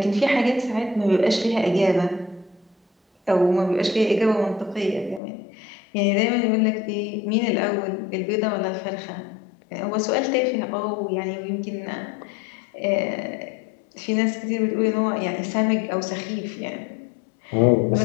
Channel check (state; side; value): drops out; right; at 5.2 s